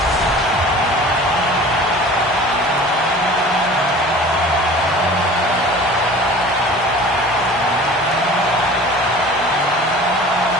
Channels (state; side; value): normal; both; correlation 0.42